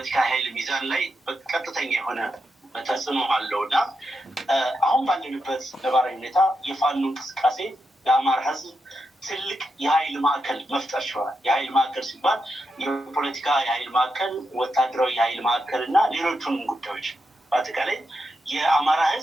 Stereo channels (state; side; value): normal; both; correlation 0.85